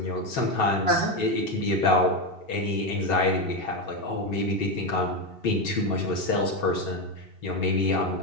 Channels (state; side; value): late; right; 2.7 ms